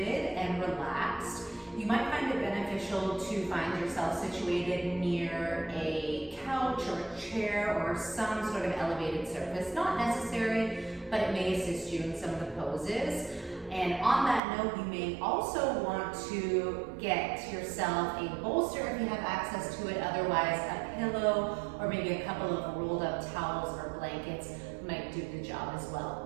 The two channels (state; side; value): drops out; left; at 14.4 s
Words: and relaxed. You might find it beneficial to find yourself situated near a couch or a chair or some sort of elevated surface. Not necessary, but it may assist you in some of the poses. And on that note, you may also want to get yourself a bolster if you have access to it. Otherwise, a pillow or maybe a couple of rolled up towels or blankets might do the job as